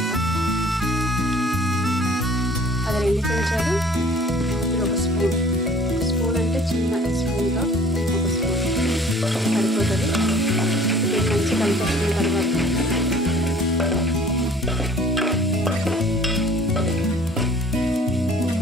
అది 2 చెంచాలు. ఇది ఒక స్పూన్. స్పూన్ అంటే చిన్న స్పూన్తో 1 స్పూన్ సరిపోతుంది. ఇది మంచి కలిపేసిన తర్వాత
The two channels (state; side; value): normal; both; correlation 0.51